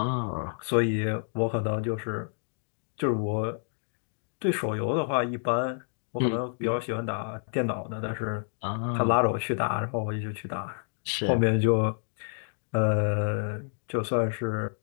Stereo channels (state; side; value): silent; right; digital silence